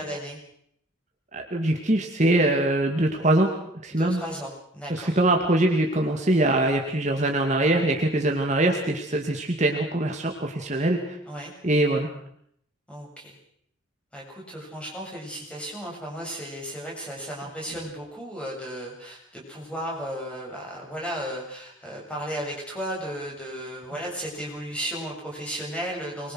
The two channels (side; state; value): both; normal; correlation 0.51